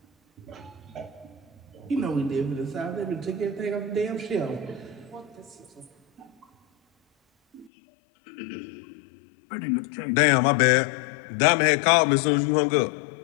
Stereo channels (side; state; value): right; drops out; at 7.7 s